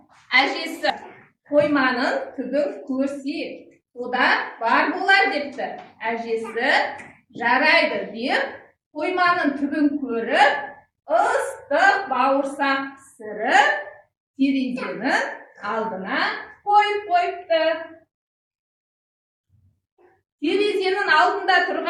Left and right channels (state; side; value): identical; both; correlation 1.00